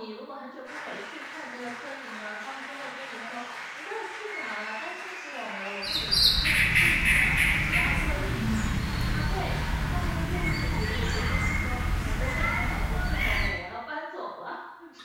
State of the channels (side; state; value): both; identical; correlation 1.00